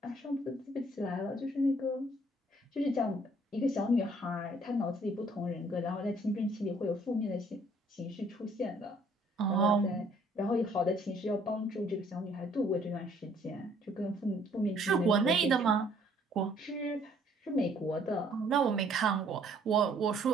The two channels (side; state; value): both; normal; correlation 0.61